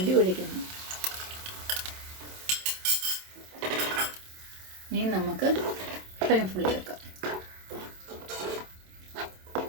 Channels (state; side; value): late; left; 27 ms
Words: ഒഴിക്കുന്നു. ഇനി നമുക്ക് ഫ്ലെയിം ഫുള്ളി വെക്കാം.